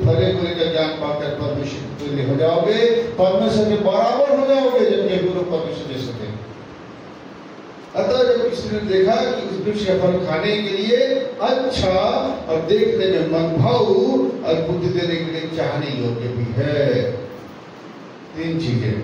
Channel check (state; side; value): identical; both; correlation 1.00